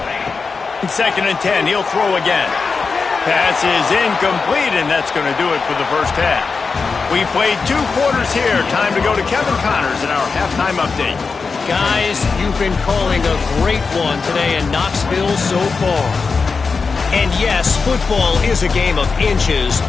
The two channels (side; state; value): right; quieter; 4.8 dB